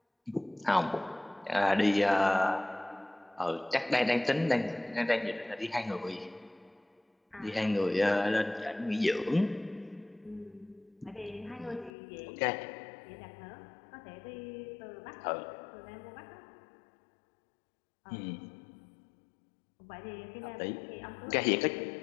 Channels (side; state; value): right; drops out; at 11.9 s